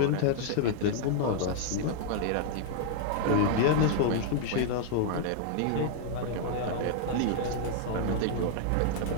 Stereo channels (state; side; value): different; both; correlation 0.00